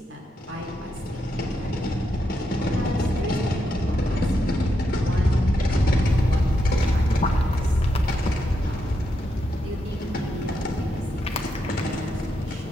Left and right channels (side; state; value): both; normal; correlation 0.82